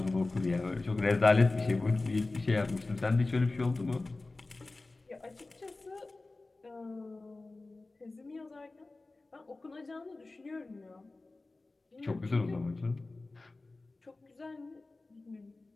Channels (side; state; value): right; quieter; 3.2 dB